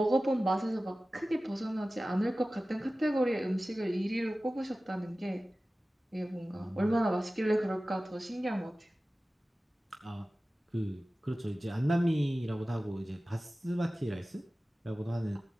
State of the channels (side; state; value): both; normal; correlation 0.96